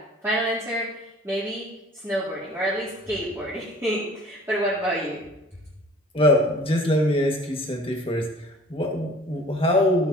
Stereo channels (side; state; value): both; normal; correlation 0.48